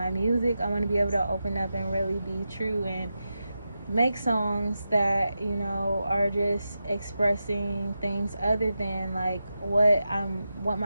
music. I want to be able to open up and really be true and make songs that, you know, are just expressing things other than like what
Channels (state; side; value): inverted; both; correlation -0.90